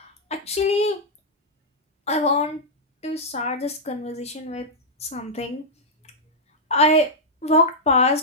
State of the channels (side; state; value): both; normal; correlation -0.06